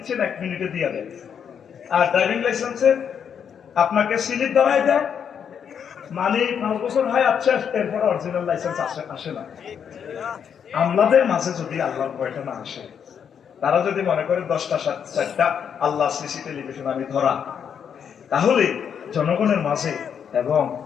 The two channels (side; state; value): right; quieter; 7.7 dB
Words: 1 মিনিটে দিয়ে দেয়। আর ড্রাইভিং লাইসেন্সে আপনাকে স্লিপ দেওয়াই দেয়, মানে 5 বছর হয়, আচ্ছা এরপর অরিজিনাল লাইসেন্স আসে না। আমলাদের মাঝে যদি আল্লাহর ভয়টা না আসে, তারা যদি মনে করে 10টা 4টা আল্লাহ সিসি টেলিভিশন আমি ধরা, তাহলে জনগণের মাঝে এবং